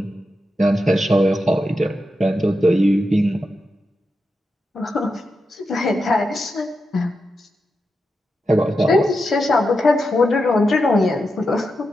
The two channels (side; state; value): both; normal; correlation 0.88